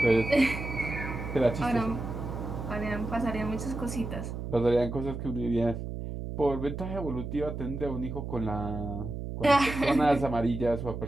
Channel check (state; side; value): noise; right; hum, 6 dB below the sound